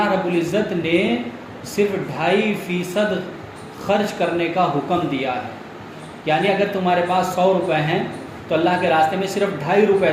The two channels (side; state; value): both; identical; correlation 1.00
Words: رب العزت نے صرف 2.5% خرچ کرنے کا حکم دیا ہے، یعنی اگر تمہارے پاس 100 روپے ہیں تو اللہ کے راستے میں صرف 2.5 روپے